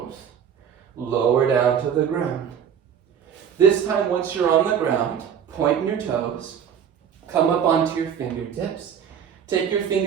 Lower down to the ground. This time, once you're on the ground, point your toes. Come up onto your fingertips. Take your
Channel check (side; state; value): left; quieter; 8.1 dB